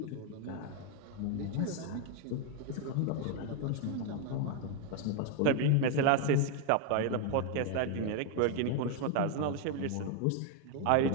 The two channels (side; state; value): both; different; correlation 0.01